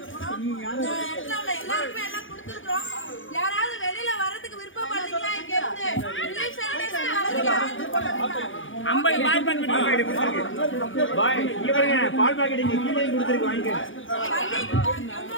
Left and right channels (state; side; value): late; right; 0.57 ms